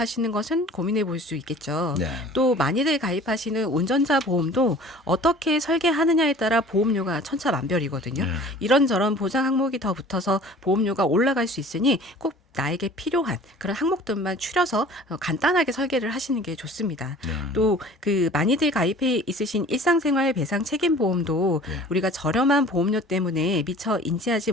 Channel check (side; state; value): both; normal; correlation 0.46